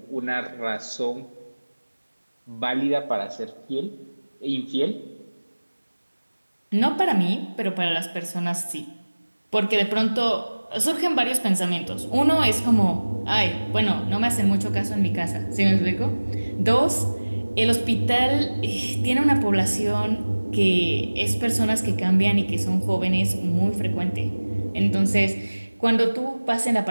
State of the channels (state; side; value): inverted; both; correlation -1.00